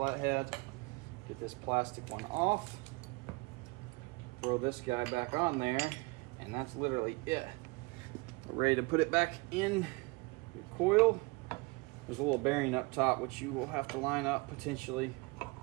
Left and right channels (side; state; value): left; quieter; 26.0 dB